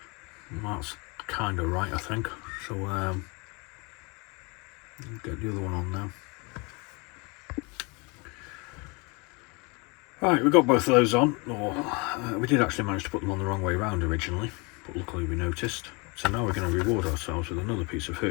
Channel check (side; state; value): right; quieter; 29.6 dB